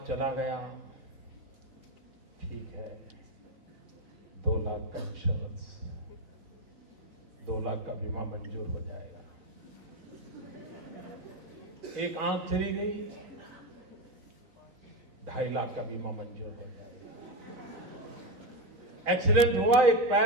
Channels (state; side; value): late; left; 4.0 ms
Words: चला गया, ठीक है, 2 लाख का इंश्योरेंस, 2 लाख का बीमा मंजूर हो जाएगा। एक आंख चली गई, 2.5 लाख का बीमा मंजूर हो जाएगा। एक्सीडेंट हुआ, एक